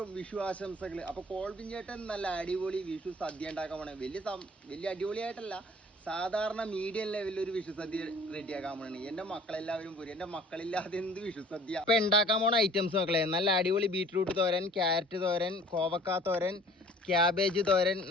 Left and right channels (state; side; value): normal; both; correlation 0.50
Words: വിഷു ആശംസകൾ. അപ്പൊ കോൾവിൻ ചേട്ടൻ നല്ല അടിപൊളി വിഷു സദ്യ ഉണ്ടാക്കാൻ പോണേ. വലിയ അടിപൊളിയായിട്ടല്ല, സാധാരണ മീഡിയം ലെവലിൽ ഒരു വിഷു സദ്യ റെഡിയാക്കാൻ പോണേ. എന്റെ മക്കളെല്ലാവരും പോരും, എന്റെ മക്കളില്ലാതെ എന്ത് വിഷു സദ്യ. അപ്പൊ ഉണ്ടാക്കാൻ പോണ ഐറ്റംസ് മക്കളെ, നല്ല അടിപൊളി ബീട്രൂട്ട് തോരൻ, ക്യാരറ്റ് തോരൻ, കോവക്ക തോരൻ, ക്യാബേജ് തോരൻ,